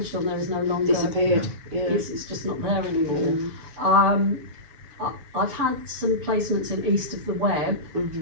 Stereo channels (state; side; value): late; left; 7.0 ms